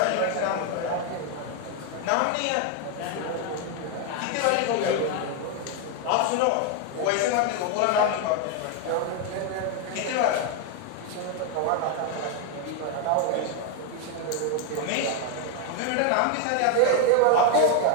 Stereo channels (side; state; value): both; different; correlation 0.01